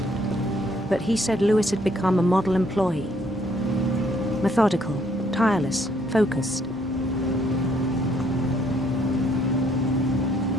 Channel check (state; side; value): normal; both; correlation 0.67